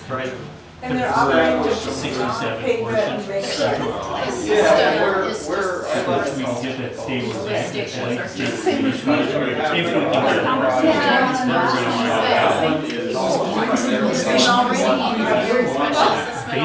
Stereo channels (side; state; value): both; identical; correlation 1.00